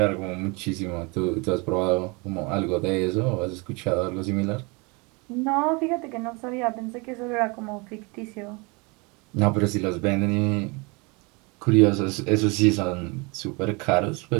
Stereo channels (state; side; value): quieter; left; 28.7 dB